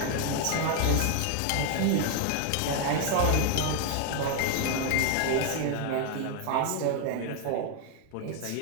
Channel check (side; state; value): both; different; correlation 0.00